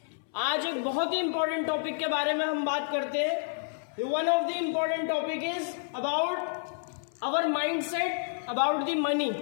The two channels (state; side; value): silent; right; 58 dB below the other